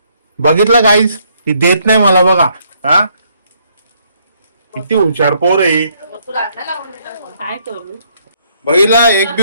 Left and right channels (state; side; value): inverted; both; correlation -0.70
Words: बघितलं गाईस ती देत नाही मला. बघा हा किती हुशार पोर आहे. काय करू? बघितला एक